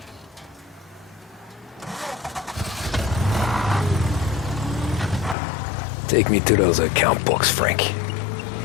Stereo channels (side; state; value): right; drops out; at 5.4 s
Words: Take me to those account books, Frank.